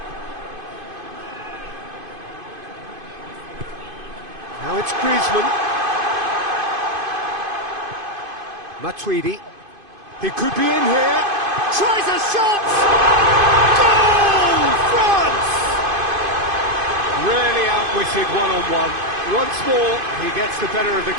Now it's Griezmann. Matuidi. He could be in here. Tries a shot! Goal! France! Really outwitted one-on-one. Once more, he gets the better of the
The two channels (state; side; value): late; left; 2.5 ms